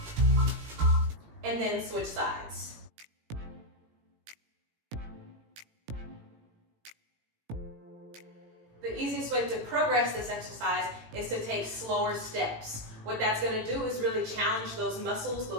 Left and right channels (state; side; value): late; left; 18 ms